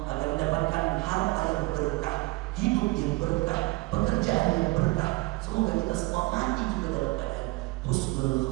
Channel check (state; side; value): quieter; left; 22.6 dB